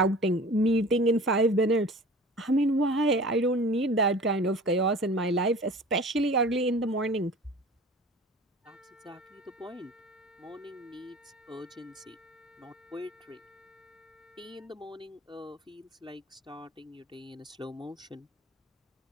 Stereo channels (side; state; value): both; normal; correlation 0.41